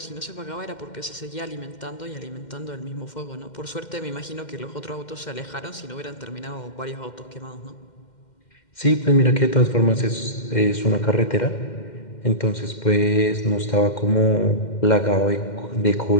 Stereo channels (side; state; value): right; late; 2.1 ms